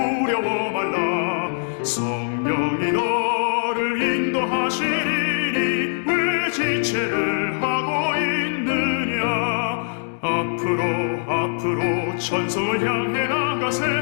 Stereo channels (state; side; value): silent; right; digital silence